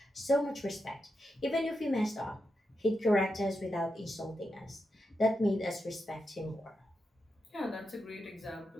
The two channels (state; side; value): normal; both; correlation 0.86